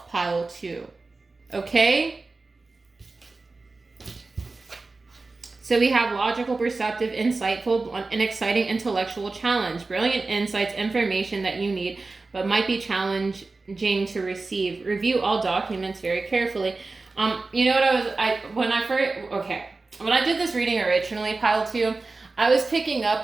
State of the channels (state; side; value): quieter; left; 3.6 dB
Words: pile 2. Okay? So we have logical, perceptive, insightful, an exciting intellectual challenge, brilliant insights, information that you need, but might be challenging to receive. Review all documents very carefully. You know what when I did this reading originally, pile 2, I was picking